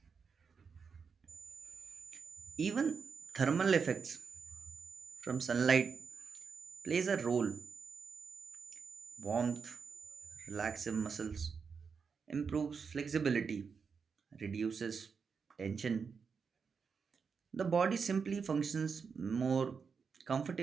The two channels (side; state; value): left; quieter; 5.8 dB